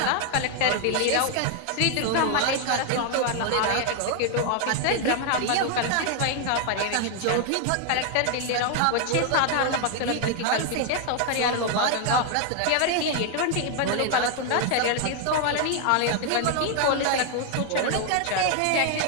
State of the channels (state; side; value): different; both; correlation 0.00